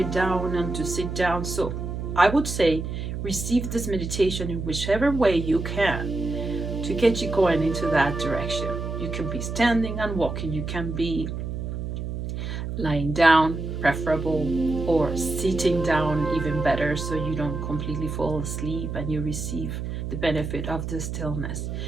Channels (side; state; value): right; noise; hum, 5 dB below the sound